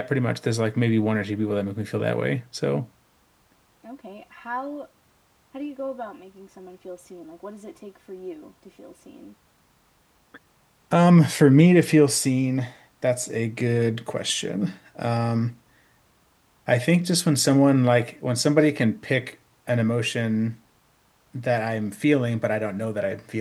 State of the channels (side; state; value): both; identical; correlation 1.00